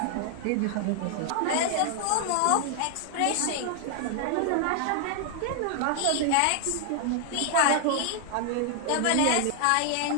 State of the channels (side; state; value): both; different; correlation 0.00